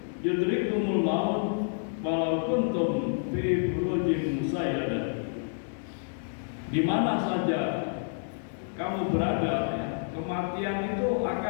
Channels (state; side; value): silent; right; digital silence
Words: yudrikumul maut walau kuntum fi burujin musayyadah. Di mana saja kamu berada ya, kematian itu